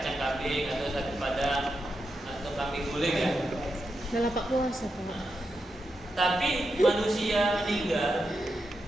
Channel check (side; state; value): both; normal; correlation 0.87